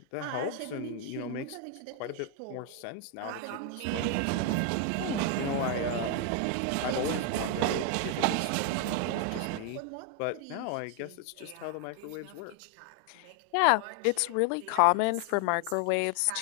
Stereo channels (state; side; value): different; both; correlation 0.01